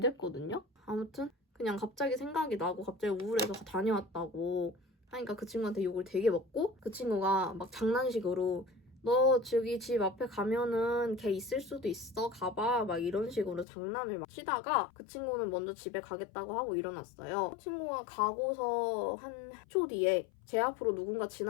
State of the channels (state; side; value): drops out; right; at 13.7 s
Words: 아무튼 그냥 갑자기 생각이 나고 갑자기 우울해서 다녀왔다고 하니까 그 친구한테 욕을 되게 먹고 그 친구가 막 장난식으로 너 저기 집 앞에 가면은 걔 있을 수도 있어 가봐 막 이런 식으로 장난을 막 치다가 그 친구는 먼저 집에 가겠다고 하고 일어났어요. 그 친구가 가고서 한 초 뒤에 제 앞으로 누군가